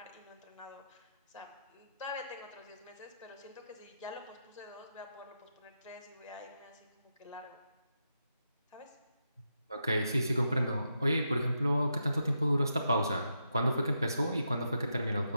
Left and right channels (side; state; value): both; inverted; correlation -0.84